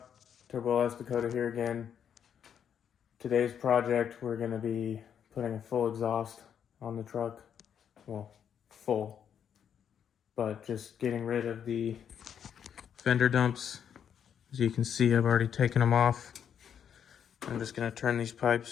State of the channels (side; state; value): right; quieter; 8.4 dB